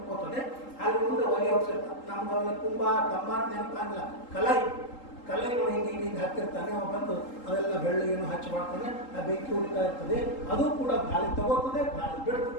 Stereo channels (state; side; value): late; right; 3.8 ms